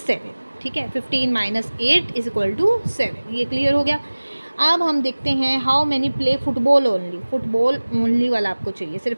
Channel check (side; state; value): both; inverted; correlation -1.00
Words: ठीक है, 15 माइनस 8 इज इक्वल टू 7। ये क्लियर हो गया। अब हम देखते हैं how many play football only. Football only वाला आपको चाहिए,